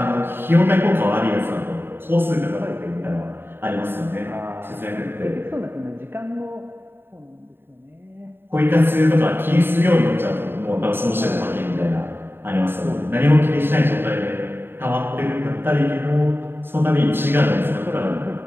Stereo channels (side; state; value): left; late; 0.10 ms